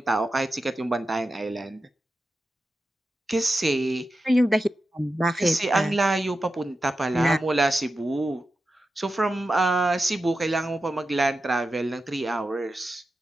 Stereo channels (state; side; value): normal; both; correlation 0.91